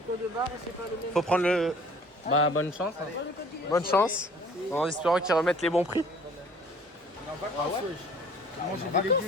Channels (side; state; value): both; normal; correlation 0.52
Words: barre, c'est pas le même. Faut prendre le... Bah, bonne chance. Hein. Bonne chance. En espérant qu'ils remettent les bons prix. Manger des